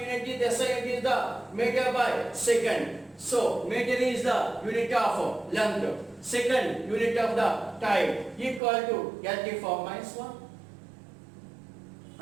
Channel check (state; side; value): drops out; left; at 8.6 s